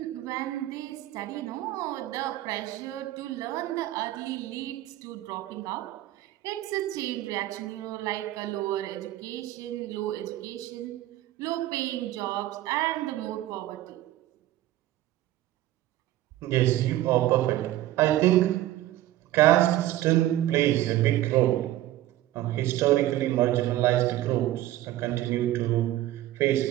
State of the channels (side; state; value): left; quieter; 14.7 dB